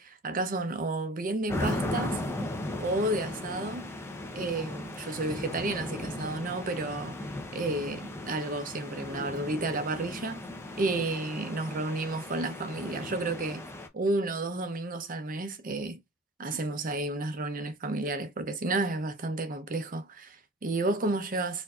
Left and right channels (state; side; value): normal; both; correlation 0.41